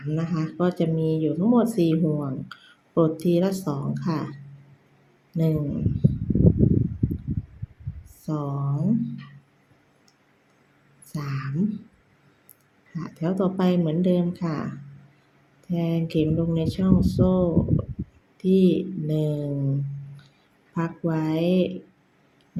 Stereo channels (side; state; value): both; identical; correlation 1.00